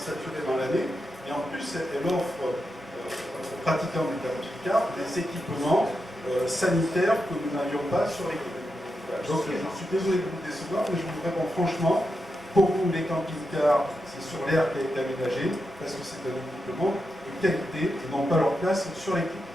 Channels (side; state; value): both; normal; correlation 0.87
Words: l'année et en plus elle offre aux pratiquants du camping-car des équipements sanitaires que nous n'avions pas sur les quais. Donc je suis désolé de vous décevoir, mais je vous réponds franchement, pour vous les camping-cars, c'est sur l'aire qui a été aménagé, parce que c'est un équipement de qualité, et non pas leur place sur les quais.